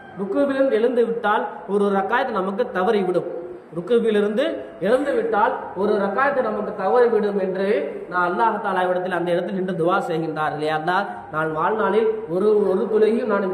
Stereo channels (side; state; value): both; identical; correlation 1.00